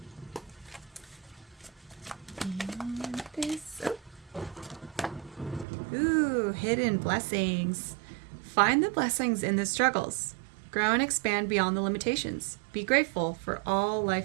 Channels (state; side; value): drops out; left; at 5.7 s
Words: And this. Oh. Ooh, hidden blessings. Find the blessings in the struggles. Grow and expand beyond the limitations. Be grateful for all